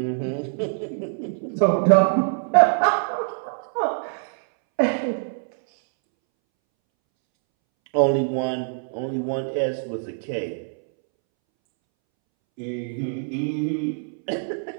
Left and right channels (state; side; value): silent; left; 63 dB below the other